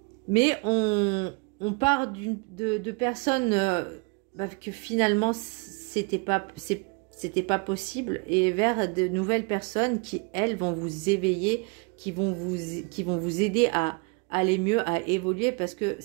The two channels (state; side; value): quieter; left; 32.1 dB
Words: mais on part de personnes... que finalement c'était pas possible et vers de nouvelles personnes qui elles vont vous éveiller, qui vont vous aider à aller mieux, à évoluer parce que